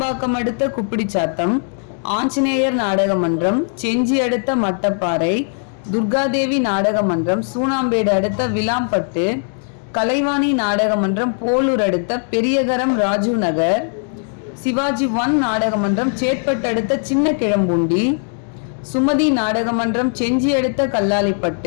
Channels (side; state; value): right; silent; 58 dB below the other